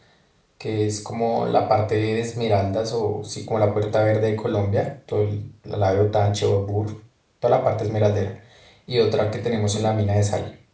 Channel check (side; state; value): both; identical; correlation 1.00